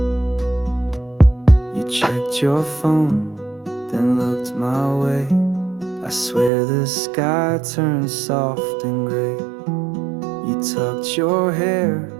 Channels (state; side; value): drops out; left; at 6.5 s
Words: You checked your phone, then looked my way. I swear the sky turned soft and gray. You tucked your hair